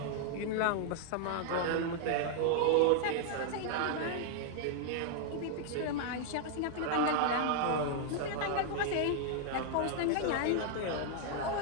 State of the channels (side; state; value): both; different; correlation 0.00